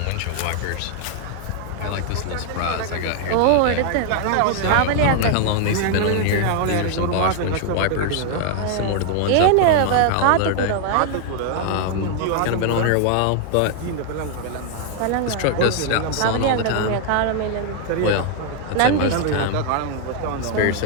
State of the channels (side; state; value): both; different; correlation 0.00